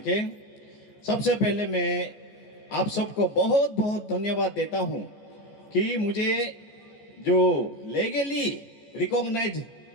सबसे पहले मैं आप सबको बहुत बहुत धन्यवाद देता हूँ कि मुझे जो लीगली रिकॉग्नाइज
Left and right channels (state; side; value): late; right; 14 ms